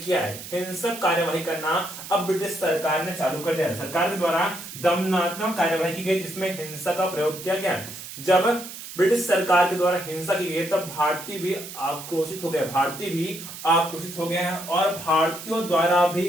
किया है। हिंसक कार्यवाही करना अब ब्रिटिश सरकार ने चालू कर दिया। सरकार के द्वारा दमनात्मक कार्यवाही की गई, जिसमें हिंसा का प्रयोग किया गया। जब ब्रिटिश सरकार के द्वारा हिंसा की गई तब भारतीय भी आक्रोशित हो गए हैं, और भारतीयों द्वारा भी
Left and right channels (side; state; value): right; noise; hiss, 12 dB below the sound